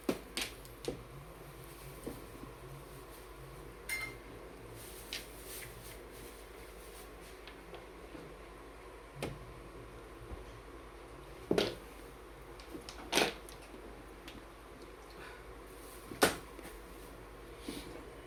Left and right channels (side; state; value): both; identical; correlation 1.00